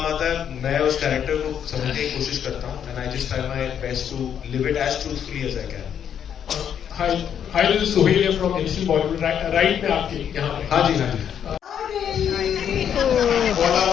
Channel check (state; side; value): quieter; right; 8.8 dB